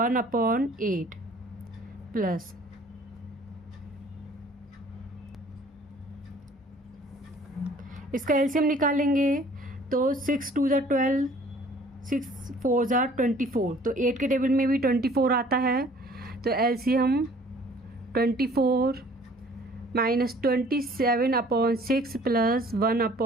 प्लस। इसका एलसीएम निकालेंगे। तो 6 2 ज़ा 12, 6 4 ज़ा 24, तो 8 के टेबल में भी 24 आता है। तो एलसीएम 24 -27/6 प्लस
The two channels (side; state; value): both; normal; correlation 0.54